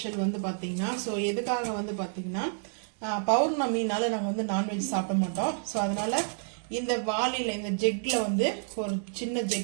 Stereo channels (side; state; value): left; silent; 58 dB below the other